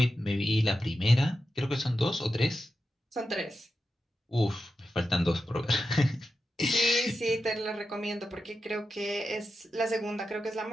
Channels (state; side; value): normal; both; correlation 0.90